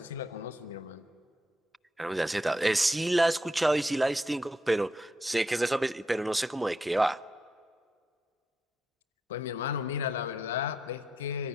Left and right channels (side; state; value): both; normal; correlation 0.81